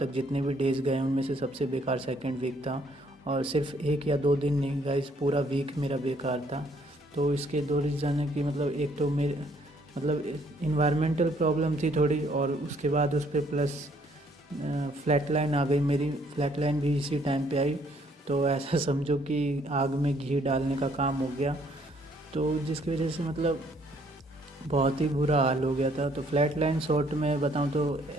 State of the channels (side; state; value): both; normal; correlation 0.65